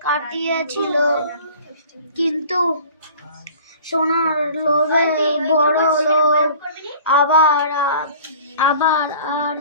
কাটিয়েছিল, কিন্তু সোনার লোভে বড় লোভ আবার আর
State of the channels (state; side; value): inverted; both; correlation -0.46